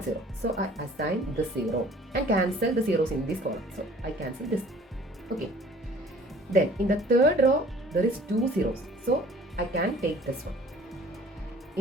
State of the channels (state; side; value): normal; both; correlation 0.51